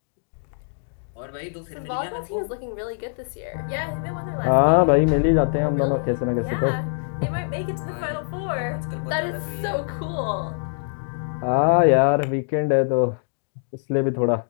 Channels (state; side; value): silent; right; digital silence